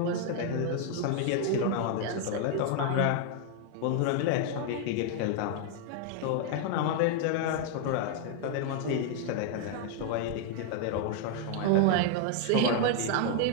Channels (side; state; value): both; different; correlation 0.00